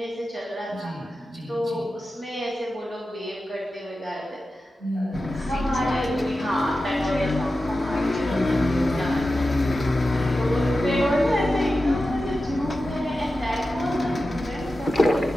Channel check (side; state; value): both; normal; correlation 0.93